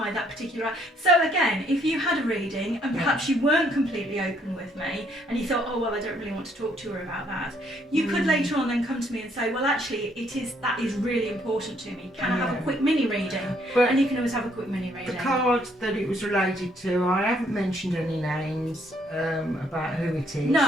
that particular. So again, if you had a reading and perhaps you weren't completely open with me and you thought, oh well, I don't really want to talk to her about that, you could later on then come to me and say, well, actually, that is really important to me. Can I have a quick mini reading? And you can always have a quick mini reading. The card that it was related to, I haven't mentioned any names about who it is.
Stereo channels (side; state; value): both; normal; correlation 0.68